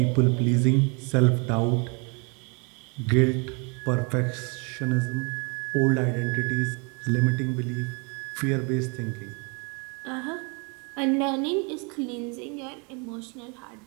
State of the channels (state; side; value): quieter; left; 33.8 dB